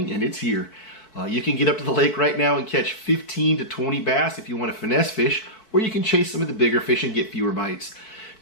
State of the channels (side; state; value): right; late; 4.6 ms